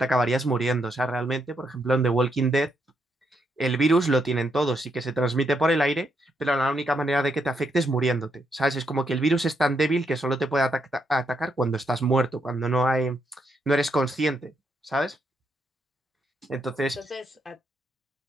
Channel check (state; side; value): normal; both; correlation 0.78